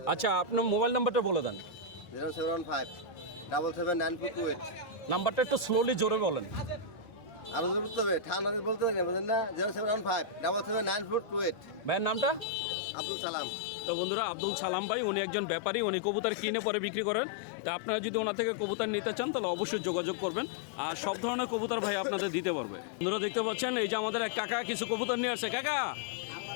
আচ্ছা, আপনার মোবাইল নাম্বারটা বলে দেন। 075 779428। নাম্বারটা একটু স্লোলি জোরে বলেন। আরো জোর করতে হবে, ঠান্ডা বলতে পারি না, বুঝলেন না? 075 779428। ভাইয়ের নামটা? আব্দুল সালাম। তো বন্ধুরা, আব্দুল সালাম ভাই, উনি একজন ব্যাপারী, উনি কবুতর কিনে পরে বিক্রি করেন। তা আপনারা যদি ওনার থেকে কবুতর নিতে চান তাহলে অবশ্যই যোগাযোগ করবেন, আর সব ধরনের কবুতর ভাই আপনাদের দিতে পারবে। বন্ধুরা দেখতে পাচ্ছেন এই যে আমাদের এক কাকা কিছু কবুতর নিয়ে আসছে। কাকা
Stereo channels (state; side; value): drops out; right; at 12.5 s